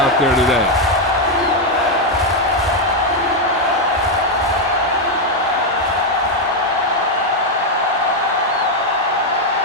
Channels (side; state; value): both; normal; correlation 0.02